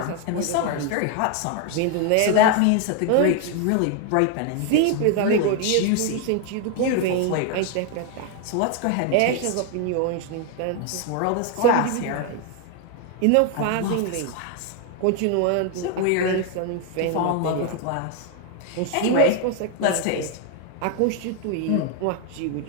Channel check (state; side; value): different; both; correlation 0.01